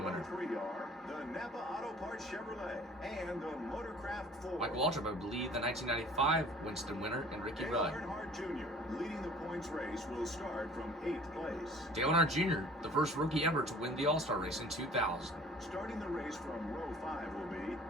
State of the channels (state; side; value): normal; both; correlation 0.49